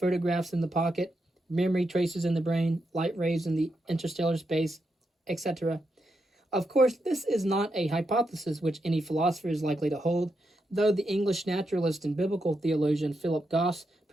in the pocket, memory traces in the brain, light rays in the interstellar space, etc. Of course, this is not a hypothesis which any philosopher is likely to hold, though the English naturalist and biblical theologian Philip Goss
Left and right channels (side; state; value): both; normal; correlation 0.84